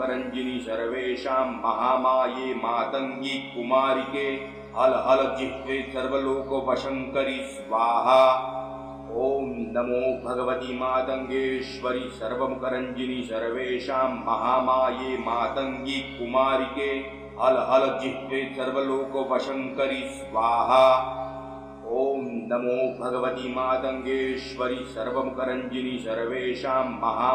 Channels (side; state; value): both; identical; correlation 1.00